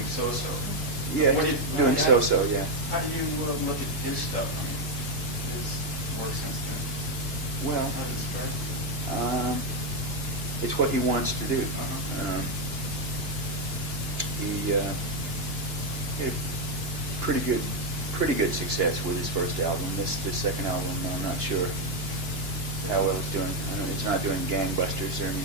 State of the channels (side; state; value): left; late; 2.9 ms